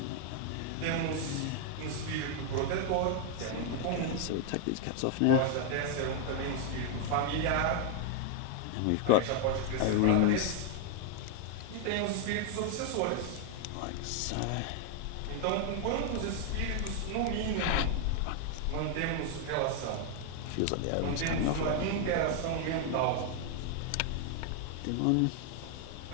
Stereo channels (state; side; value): different; both; correlation 0.00